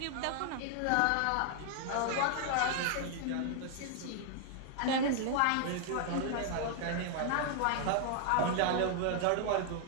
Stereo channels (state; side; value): different; both; correlation 0.00